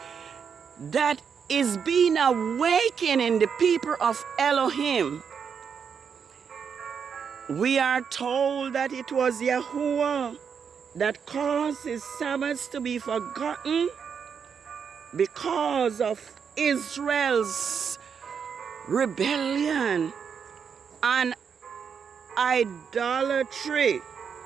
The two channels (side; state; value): left; quieter; 6.8 dB